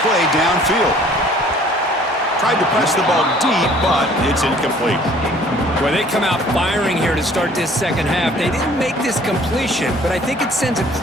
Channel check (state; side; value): normal; both; correlation 0.54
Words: play downfield. Tried to press the ball deep, but it's incomplete. Well, they come out firing here to start this second half. They didn't make this completion, but I think it sends a